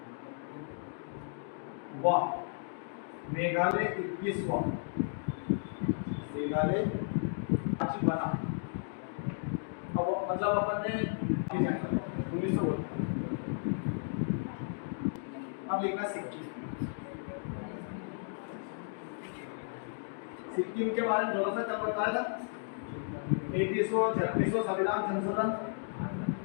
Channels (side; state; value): right; silent; digital silence